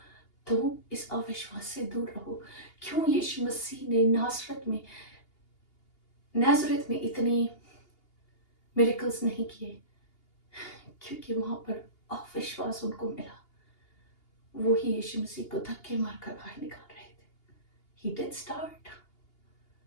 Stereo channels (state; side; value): late; right; 2.8 ms